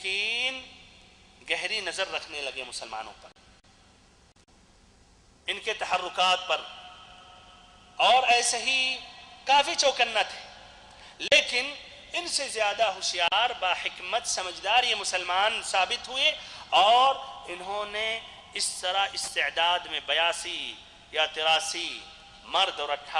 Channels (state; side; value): identical; both; correlation 1.00